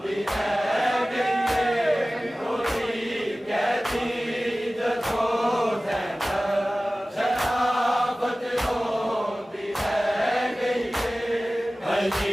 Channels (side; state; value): both; normal; correlation 0.97